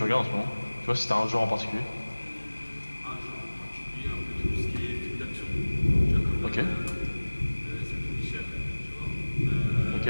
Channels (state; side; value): inverted; both; correlation -1.00